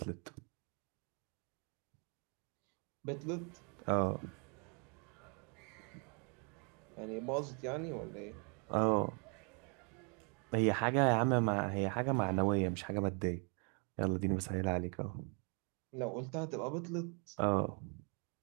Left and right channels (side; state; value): left; quieter; 38.8 dB